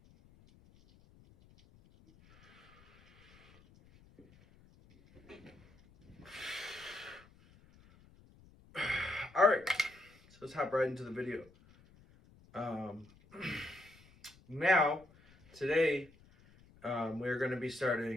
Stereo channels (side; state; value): left; noise; rumble, 26 dB below the sound